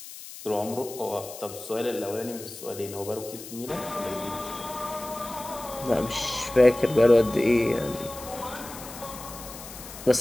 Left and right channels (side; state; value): left; noise; hiss, 14 dB below the sound